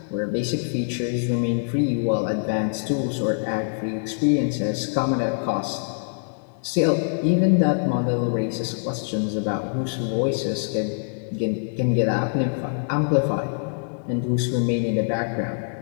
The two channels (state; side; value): silent; right; digital silence